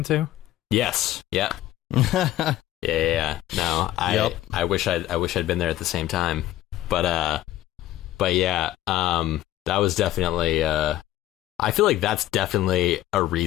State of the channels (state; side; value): quieter; right; 14.1 dB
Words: to? Yes. Yeah. Yeah. No, I wish I'd been there at the same time. But yeah, that was definitely, I feel like that's definitely a